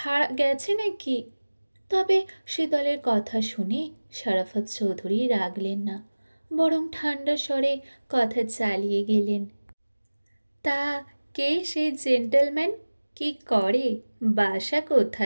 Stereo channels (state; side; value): inverted; both; correlation -1.00